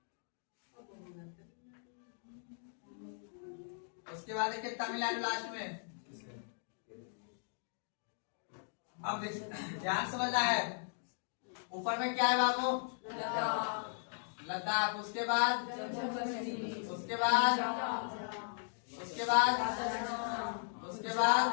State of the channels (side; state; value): right; silent; digital silence